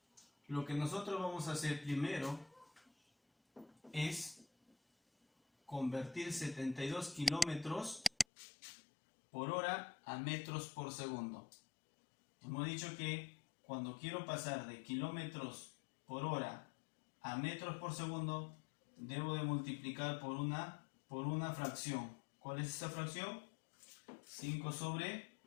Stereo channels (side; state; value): right; drops out; at 8.2 s